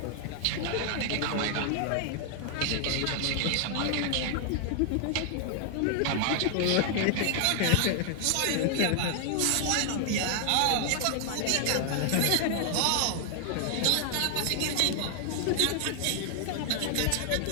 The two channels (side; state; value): both; different; correlation 0.00